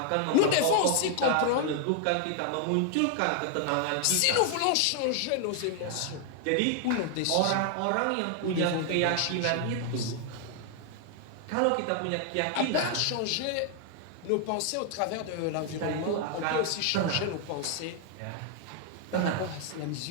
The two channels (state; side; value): different; both; correlation 0.00